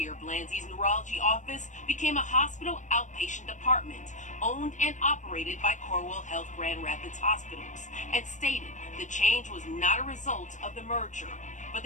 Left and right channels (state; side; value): late; right; 0.35 ms